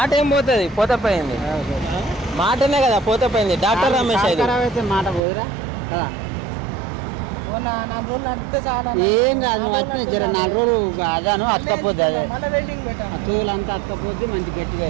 ఏం పోతుంది పోతే పోయింది మాటనే కదా పోతే పోయింది డాక్టర్ రమేష్ అయితే ఖరాబ్ అయితే మాట పోదురా కదా 4 రోజులు నడిపితే చాలా ఏం కాదు నువ్వు అట్నే జర 4 రోజులు అదాను అతకపోద్ది అదే మన వెల్డింగ్ పెట్టాను ఆ తోలంతా అతకపోద్ది మంచి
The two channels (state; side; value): drops out; left; at 5.2 s